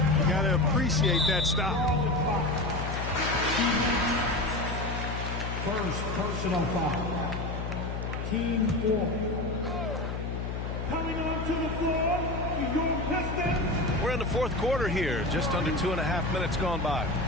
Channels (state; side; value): noise; left; hum, 4 dB below the sound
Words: You got to appreciate that stop. First personal foul. Team 4. Coming onto the floor, your Pistons. We're in the fourth quarter here. Just under 2.5 minutes gone by.